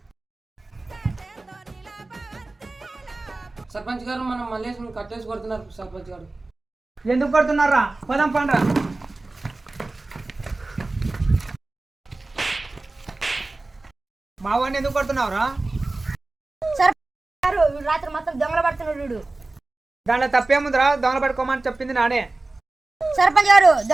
సర్పంచ్ గారు, మనం మల్లేష్ని కట్టేసి కొడుతున్నారు. సర్పంచ్ గారు ఎందుకు కొడుతున్నారా? పోదాం పండ్రా. మా వాడిని ఎందుకు కొడుతున్నావురా? రాత్రి మొత్తం దొంగలు పడుతున్నాడు. దాంట్లో తప్పేముందిరా? దొంగలు పట్టుకోమని చెప్పింది నానే. సర్పంచ్ గారు,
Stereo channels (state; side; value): quieter; left; 3.1 dB